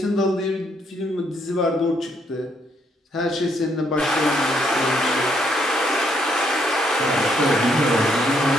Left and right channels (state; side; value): normal; both; correlation 0.72